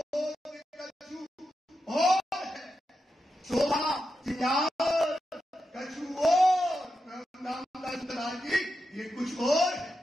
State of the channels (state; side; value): normal; both; correlation 0.88